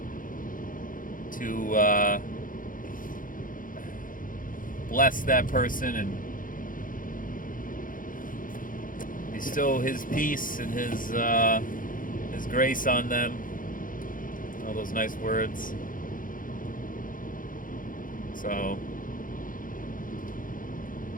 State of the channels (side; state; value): right; late; 0.40 ms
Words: to bless that person and bestow His peace and His grace on them. All those nice words. So